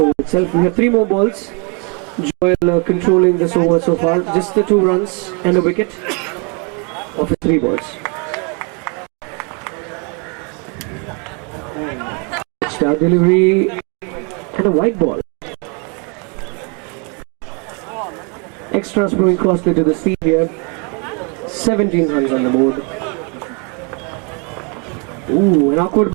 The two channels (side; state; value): left; quieter; 34.6 dB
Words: itself. We have 3 more balls. Joel controlling this over so far. Just the 2 runs and a wicket of his 3 balls. Star delivery and a white ball. Extras proving costly to the seam here. 17 runs on the board. Ooh, an awkward